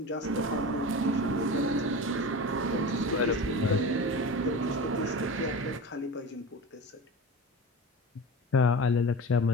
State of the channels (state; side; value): normal; both; correlation 0.31